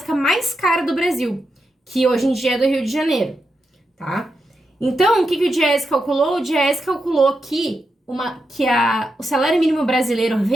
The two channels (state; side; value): normal; both; correlation 0.86